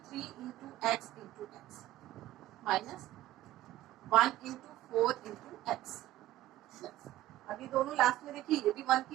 3 into x into x minus 1 into 4 into x. अभी दोनों लास्ट में देखिए ये भी 1 की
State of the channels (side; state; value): left; quieter; 14.8 dB